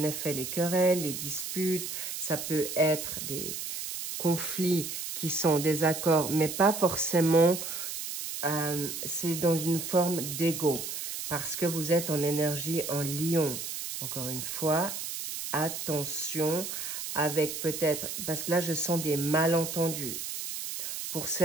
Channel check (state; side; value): noise; right; hiss, 6 dB below the sound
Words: effet les querelles, les disputes. Ça peut être des conflits qui sont des accords, mais pas forcément, c'est dans une forme d'ego. Parce que vous êtes en énergie en lion. Encore une fois, attention avec peut-être, parce que là je sens des malentendus pour